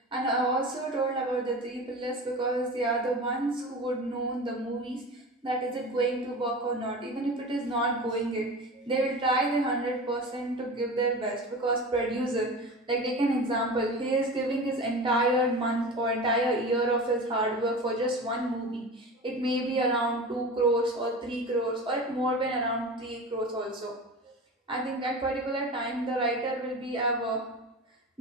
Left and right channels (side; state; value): both; normal; correlation 0.31